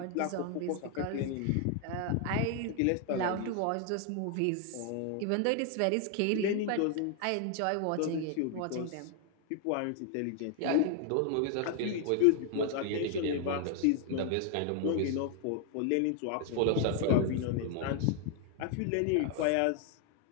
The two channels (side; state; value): both; different; correlation 0.00